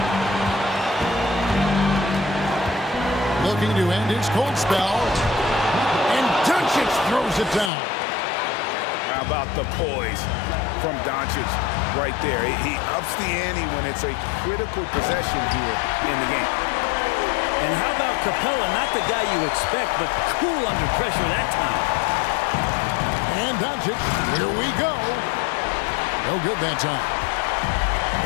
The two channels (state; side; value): drops out; right; at 7.7 s